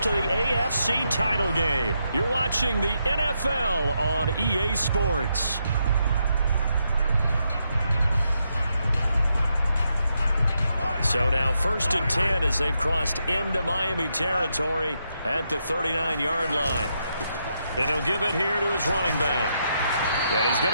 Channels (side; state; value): both; inverted; correlation -0.81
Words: to the AFC title game. You're watching the NFL on EA Sports. So now 1st and 10 as they've crossed into Miami territory at the 39-yard line. And he'll give it here to his running back. And he's